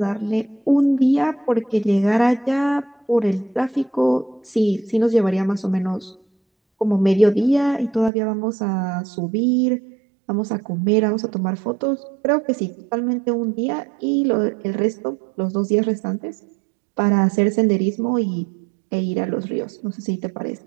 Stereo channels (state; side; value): drops out; left; at 8.1 s